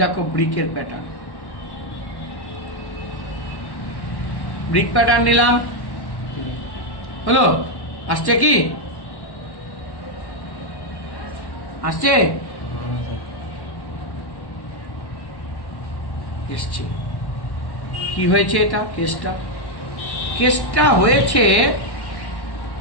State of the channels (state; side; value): late; right; 1.1 ms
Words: দেখো ব্রিকের প্যাটার্ন। ব্রিক প্যাটার্ন নিলাম, হলো? আসছে কি? আসছে? এসছে। কি হয়েছে এটা? কেসটা হয়েছে